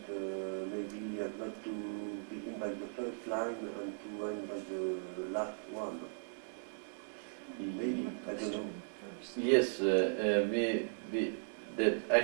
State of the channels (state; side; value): silent; left; digital silence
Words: maybe he has got to begin by the first line and to end by the last one. Maybe, I don't know. Yes, that